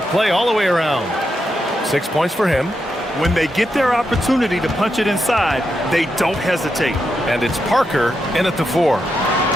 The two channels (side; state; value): both; normal; correlation 0.84